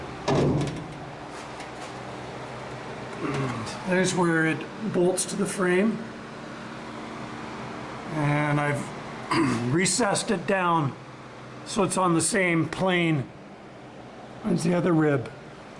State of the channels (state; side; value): identical; both; correlation 1.00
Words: There's where it bolts to the frame, and I've recessed it down so it's on the same plane as the other rib.